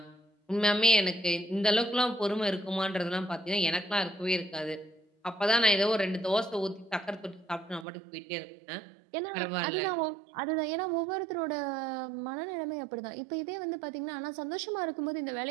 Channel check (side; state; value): left; drops out; at 7.9 s